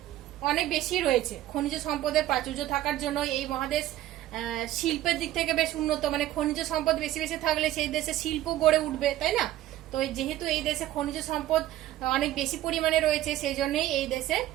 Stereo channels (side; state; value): left; quieter; 14.0 dB